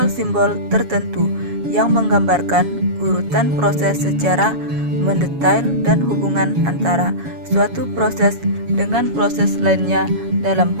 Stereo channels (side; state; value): left; late; 7.2 ms